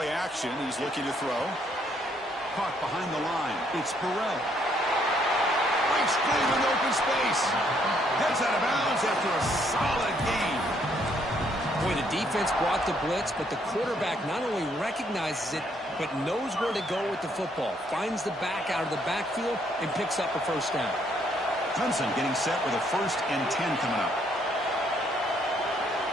action, he's looking to throw. Caught behind the line. It's Burrell. Breaks clean in open space. Heads out of bounds after a solid gain. Boy, the defense brought the blitz, but the quarterback not only recognizes it, but knows where to go with the football. Finds the back out of the backfield and picks up a first down. Clemson getting set with a 1st and 10 coming up.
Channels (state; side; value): normal; both; correlation 0.69